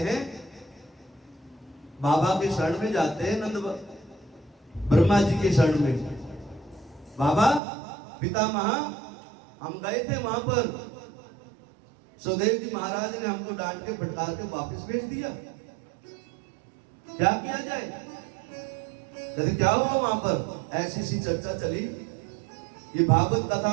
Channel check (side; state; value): left; drops out; at 7.6 s